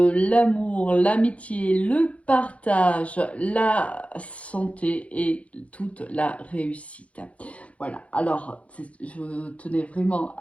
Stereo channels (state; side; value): late; right; 0.064 ms